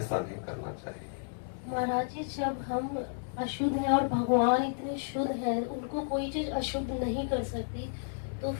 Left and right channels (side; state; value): right; silent; digital silence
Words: नहीं करना चाहिए। महाराज जी, जब हम अशुद्ध हैं और भगवान इतने शुद्ध हैं, उनको कोई चीज अशुद्ध नहीं कर सकती, तो